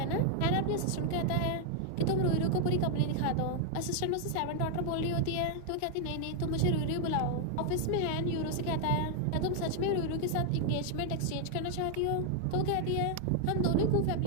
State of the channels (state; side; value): different; both; correlation 0.00